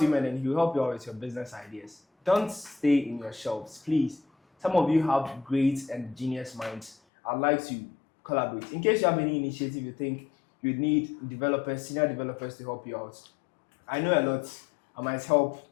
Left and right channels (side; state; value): right; drops out; at 7.0 s